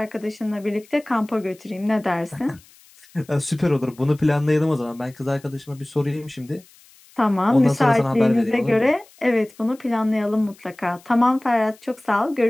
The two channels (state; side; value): noise; left; hiss, 27 dB below the sound